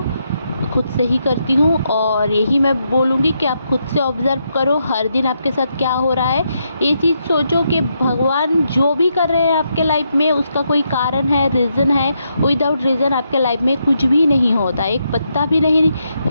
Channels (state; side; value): inverted; both; correlation -0.80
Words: खुद से ही करती हूँ और यही मैं बोलूँगी कि आप खुद से ऑब्ज़र्व करो हर दिन आपके साथ क्या हो रहा है। ये चीज़ सोचो कि भगवान जो भी कर रहे हैं आपके लाइफ में उसका कोई कारण है, रीज़न है। विदाउट रीज़न आपके लाइफ में कुछ भी नहीं होता, एक पत्ता भी नहीं